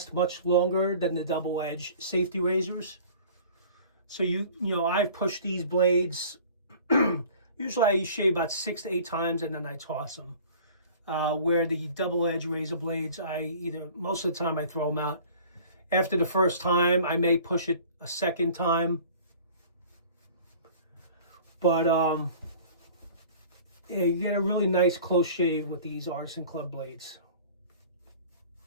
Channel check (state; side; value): inverted; both; correlation -0.46